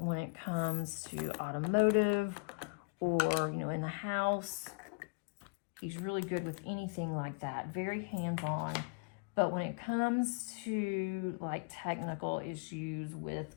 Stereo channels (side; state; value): right; quieter; 35.5 dB